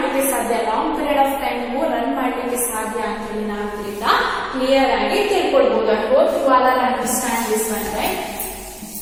ಸಾಧ್ಯ, long period of time run ಮಾಡಲಿಕ್ಕೆ ಸಾಧ್ಯ ಅಂತ ಹೇಳಿ ನಾವು ಇದರಿಂದ ಕ್ಲಿಯರ್ ಆಗಿ ತಿಳ್ಕೊಳ್ಬಹುದು. I hope you all are understand this one, right.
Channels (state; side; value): identical; both; correlation 1.00